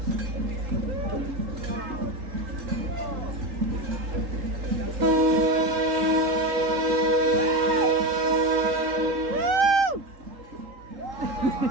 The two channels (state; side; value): late; left; 3.8 ms